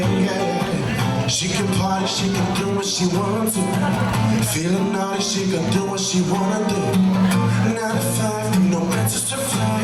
yeah. She can party, she can do what she wants to. Feeling naughty, she can do what she wanna do. 9 to 5, no mental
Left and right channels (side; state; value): both; identical; correlation 1.00